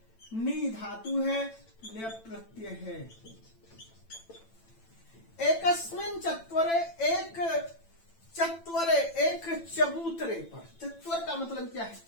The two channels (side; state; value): right; late; 9.0 ms